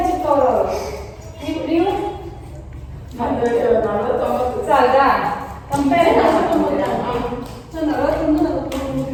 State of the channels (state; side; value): identical; both; correlation 1.00